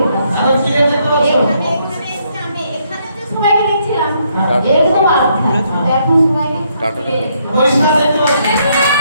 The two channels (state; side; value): inverted; both; correlation -0.73